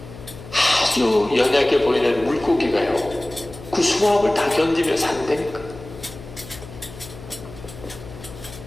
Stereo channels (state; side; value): noise; left; hum, 16 dB below the sound